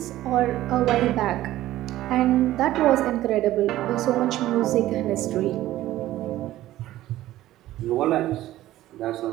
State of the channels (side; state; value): left; quieter; 14.8 dB